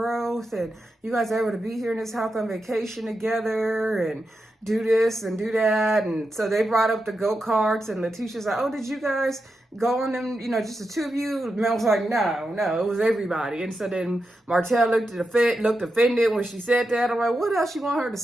and you guys are able to be here in this house on vacation together, and do this and do that. And so they brought up the go-karts, and Latisha's like, oh, did you guys go on them, just the two of you? Mel was like, no, it was everybody. And so then Martell looked offended when she said that. I'm like, what else you want her to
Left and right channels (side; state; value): both; normal; correlation 0.88